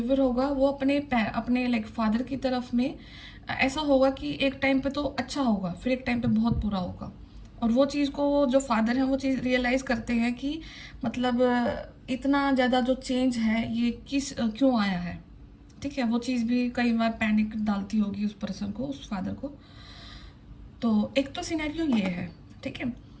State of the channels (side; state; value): both; identical; correlation 1.00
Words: होगा वो अपने लाइक फादर की तरफ में ऐसा होगा कि एक टाइम पे तो अच्छा होगा, फिर एक टाइम पे बहुत बुरा होगा। और वो चीज़ को जो फादर हैं वो चीज़ रियलाइज़ करते हैं कि मतलब इतना ज़्यादा जो चेंज है ये क्यों आया है, ठीक है। वो चीज़ भी कई बार पैनिक डालती होगी उस पर्सन को, उस फादर को। तो एक तो सिनेरियो ये है, ठीक है।